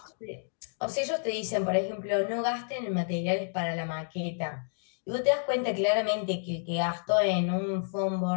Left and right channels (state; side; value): silent; right; digital silence